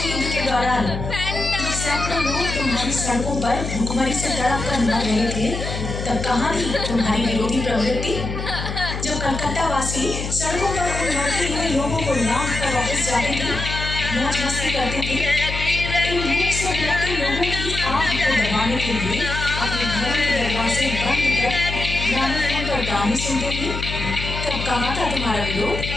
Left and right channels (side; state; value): left; noise; hum, 5 dB below the sound